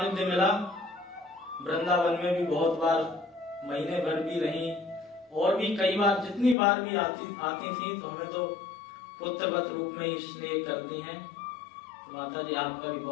मिला, वृंदावन में भी बहुत बार महीने भर भी रही, और भी कई बार जितनी बार भी आती थी तो हमें तो पुत्रवत रूप में ही स्नेह करती हैं। तो माता जी आपका भी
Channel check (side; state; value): right; drops out; at 6.6 s